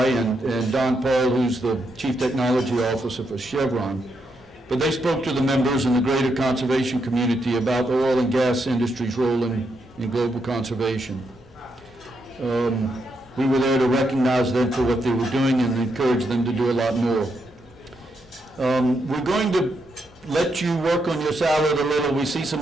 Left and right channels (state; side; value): normal; both; correlation 0.80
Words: and Don Paul, who's the chief technology officer for Chevron. But they spoke to the members and the greater conservation community about the oil and gas industry's role in global conservation. We were there to recognize them for what they were doing and encourage them to do a lot more. We're going to let you work on your salad a little. We see some